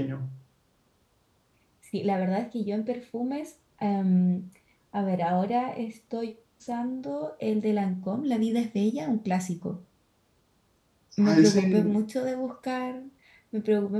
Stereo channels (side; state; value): both; identical; correlation 1.00